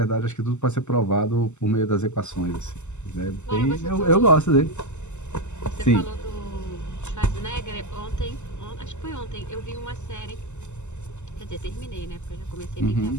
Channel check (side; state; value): right; late; 0.83 ms